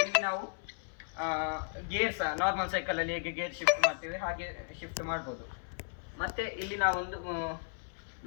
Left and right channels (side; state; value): right; silent; 55 dB below the other